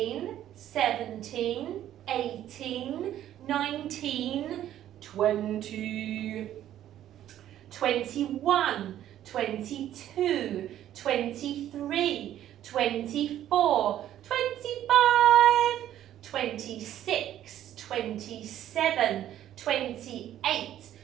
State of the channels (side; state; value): left; quieter; 11.9 dB